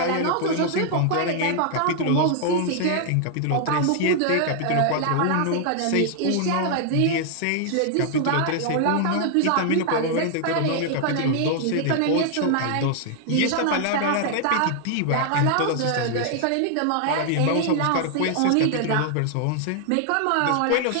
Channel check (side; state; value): both; different; correlation 0.00